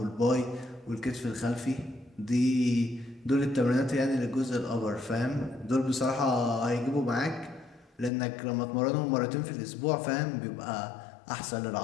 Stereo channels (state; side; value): drops out; right; at 8.1 s